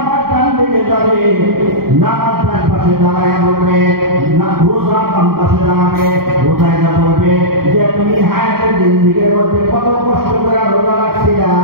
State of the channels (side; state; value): left; late; 0.93 ms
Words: ডান দিকে যাবে, নামাজ ডান পাশে দাঁড়ায় বলবে, না রোজা বাম পাশে দাঁড়াবে, রোজায় যা বলবে যে তুমি হায়াতের জিন্দেগির মধ্যে কত কষ্ট করে রোজা রাখছিলা,